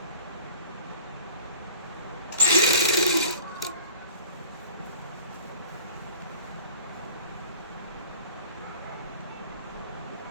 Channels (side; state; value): both; inverted; correlation -0.44